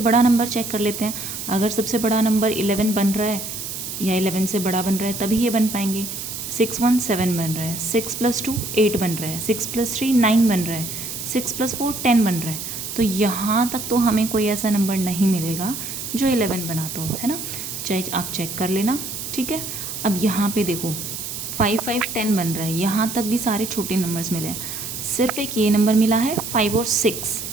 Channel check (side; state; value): right; noise; hiss, 7 dB below the sound